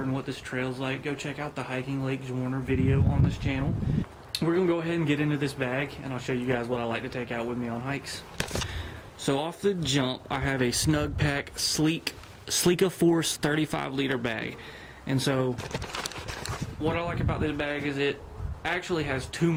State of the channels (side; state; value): both; identical; correlation 1.00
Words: and what this trail's like, go check out the Hiking Lake Zwarner video on this channel. We're going to go ahead and get into this bag, and I'll show you guys what I like to take out with me on hikes. So off the jump, I have a Snugpak Sleeka Force 35-liter bag. And so what I like about this bag is it actually has too